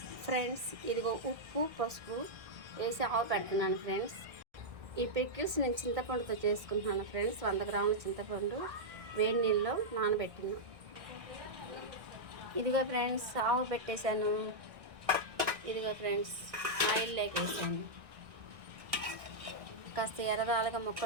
ఫ్రెండ్స్ ఇదిగో ఉప్పు పసుపు వేసి ఆవు పెడుతున్నాను ఫ్రెండ్స్. ఈ పికిల్స్ నేను చింతపండుతో చేసుకుంటున్నాను ఫ్రెండ్స్. 100 గ్రాముల చింతపండు వేడి నీళ్ళలో నానబెట్టినా. ఇదిగో ఫ్రెండ్స్ ఆవు పెట్టేశాను. ఇదిగో ఫ్రెండ్స్ ఆయిల్ వేసాను. కాస్త ఎర్రదాలుగా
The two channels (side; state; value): left; late; 1.6 ms